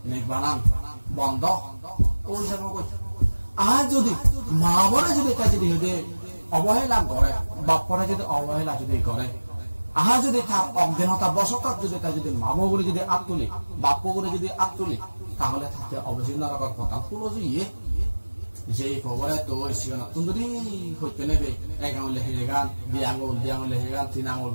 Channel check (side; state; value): both; inverted; correlation -1.00